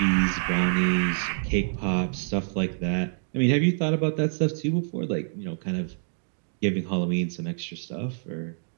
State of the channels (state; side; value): silent; left; digital silence